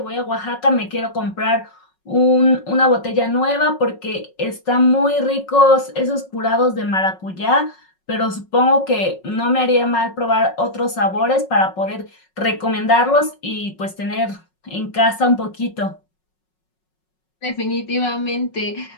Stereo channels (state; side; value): late; right; 5.4 ms